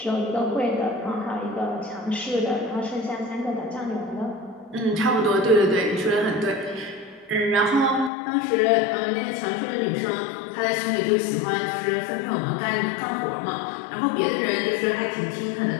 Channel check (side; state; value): right; drops out; at 8.1 s